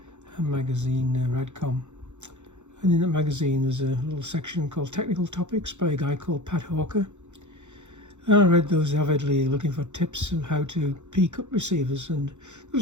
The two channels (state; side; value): late; left; 0.84 ms